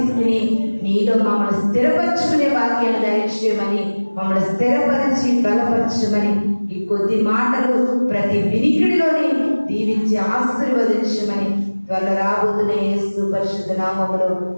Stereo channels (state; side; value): inverted; both; correlation -1.00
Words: నీలో మమ్మల్ని స్థిరపరచుకునే వాక్యాన్ని దయచేయమని, మమ్మల్ని స్థిరపరిచి బలపరచమని ఈ కొద్ది మాటలు ప్రతి వినికిడిలోని దీవించి ఆశీర్వదించమని త్వరలో రాబోతున్న యేసు పరిశుద్ధ నామములో